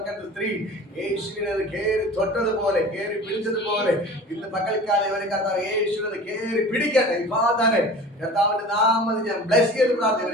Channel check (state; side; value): normal; both; correlation 0.39